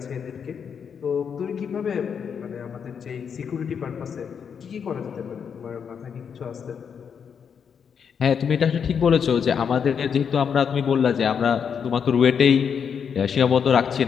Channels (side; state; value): right; quieter; 7.1 dB